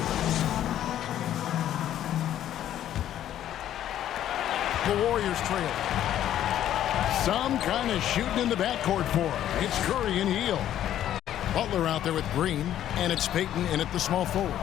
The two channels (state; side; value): quieter; right; 11.5 dB